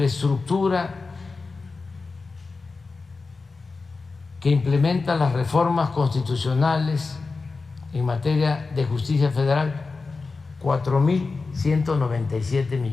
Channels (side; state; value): right; quieter; 4.1 dB